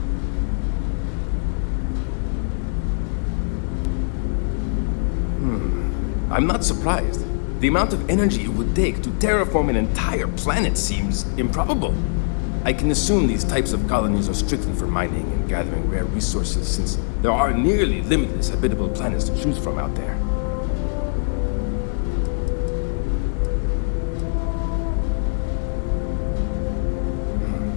I'm not surprised. The amount of energy it would take to terraform an entire planet seems improbable. I can assume these types of colonies are strictly for mining and gathering rare resources, since there are nearly limitless habitable planets to choose from out there.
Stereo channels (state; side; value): silent; right; 64 dB below the other